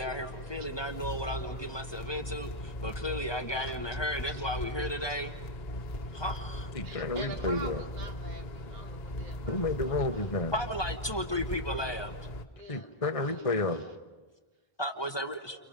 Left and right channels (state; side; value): late; right; 1.2 ms